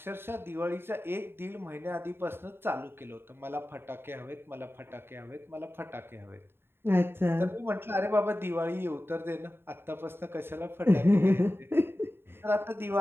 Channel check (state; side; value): late; left; 0.11 ms